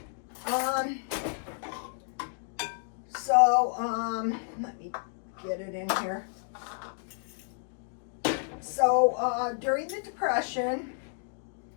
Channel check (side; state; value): right; silent; 57 dB below the other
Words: Let me get it in here. So during the Depression,